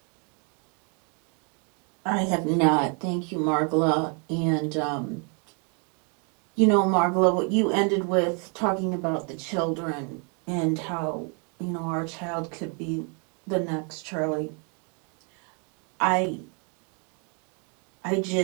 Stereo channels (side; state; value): left; quieter; 37.2 dB